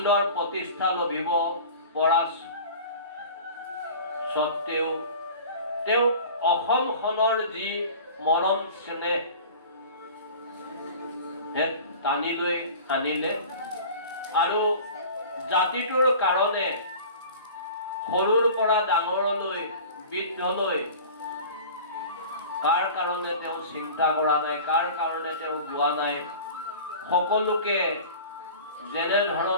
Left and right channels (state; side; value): inverted; both; correlation -0.40